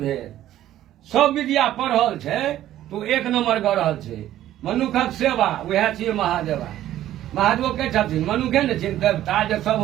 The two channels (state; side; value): quieter; left; 13.0 dB